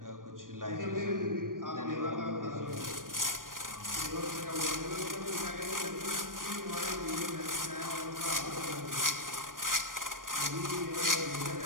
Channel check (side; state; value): left; late; 0.90 ms